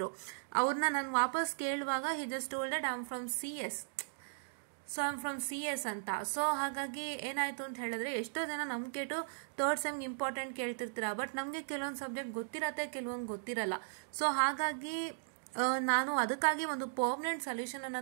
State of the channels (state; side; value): silent; left; digital silence